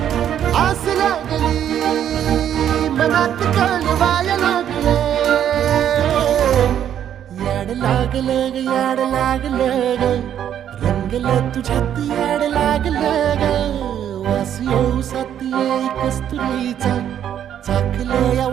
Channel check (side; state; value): left; quieter; 10.0 dB